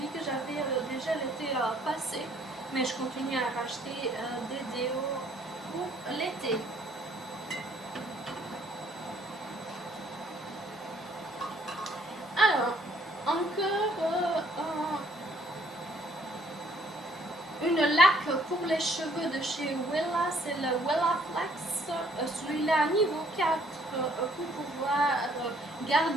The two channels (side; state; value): both; normal; correlation 0.63